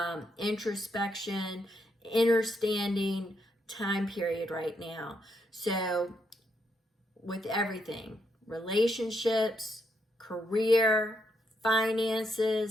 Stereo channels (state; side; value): normal; both; correlation 0.78